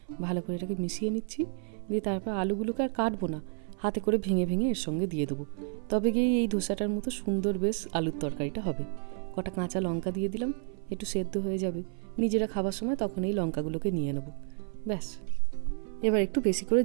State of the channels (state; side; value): silent; left; 57 dB below the other